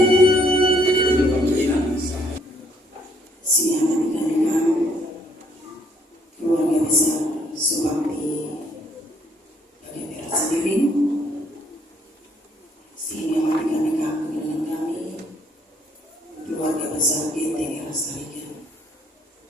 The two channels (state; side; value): normal; both; correlation 0.66